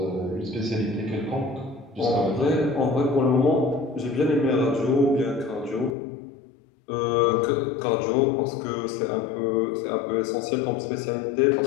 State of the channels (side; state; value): right; drops out; at 6.0 s